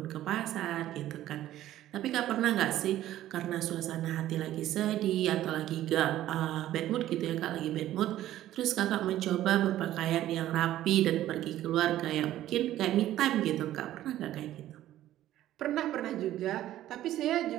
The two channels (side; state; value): left; quieter; 13.5 dB